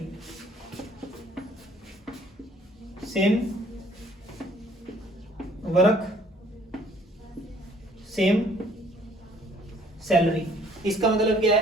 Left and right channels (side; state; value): both; normal; correlation 0.59